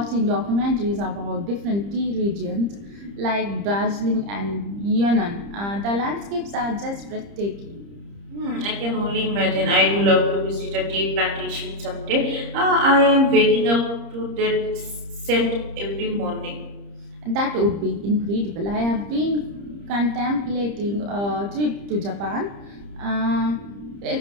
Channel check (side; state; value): left; late; 30 ms